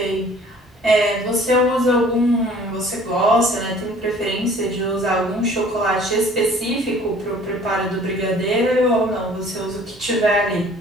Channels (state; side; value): normal; both; correlation 0.52